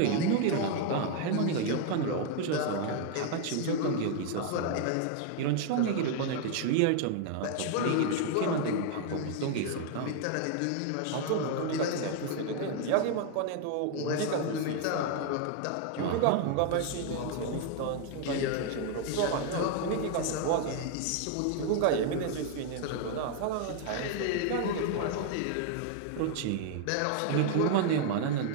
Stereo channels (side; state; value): both; different; correlation 0.00